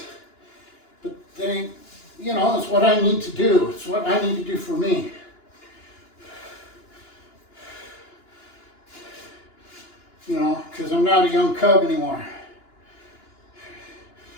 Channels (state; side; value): late; right; 2.9 ms